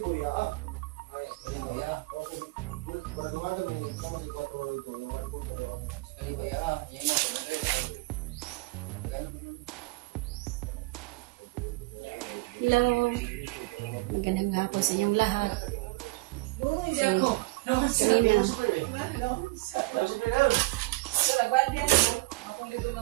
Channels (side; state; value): left; quieter; 22.4 dB